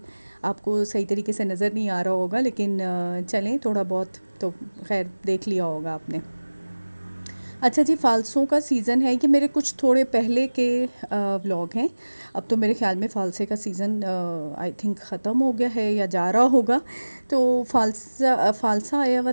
आपको सही तरीके से नज़र नहीं आ रहा होगा, लेकिन चलें, थोड़ा बहुत तो खैर देख लिया होगा आपने। अच्छा जी, फ़ालसों का सीज़न है। ये मेरे कुछ थोड़े पहले के व्लॉग हैं। अब तो मेरे ख़्याल में फ़ालसे का सीज़न आई थिंक ख़त्म हो गया है या जा रहा होगा। तो फ़ालसा आया हुआ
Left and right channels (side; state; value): both; inverted; correlation -1.00